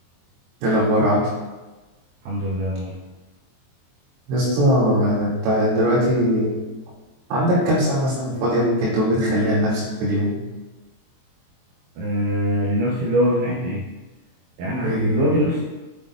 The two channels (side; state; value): left; late; 23 ms